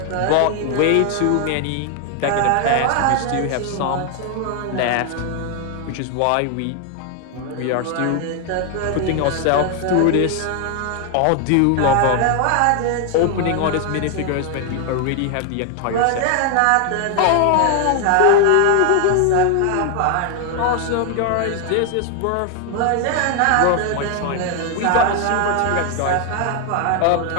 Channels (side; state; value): both; different; correlation 0.00